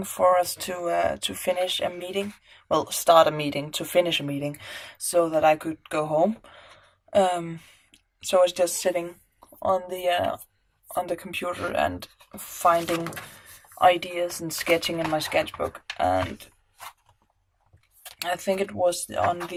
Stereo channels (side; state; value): both; identical; correlation 1.00